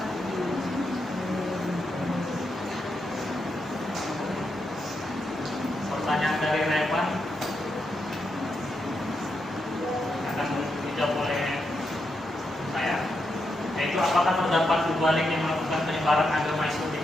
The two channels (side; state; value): both; normal; correlation 0.83